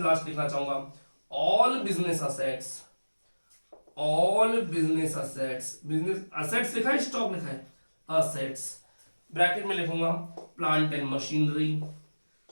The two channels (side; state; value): both; inverted; correlation -1.00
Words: लास्ट लिखना चाहूंगा, all business assets, all business assets, business assets लिखा है स्टॉक लिखा है, असेट्स ब्रैकेट में लिखूंगा plant and machinery,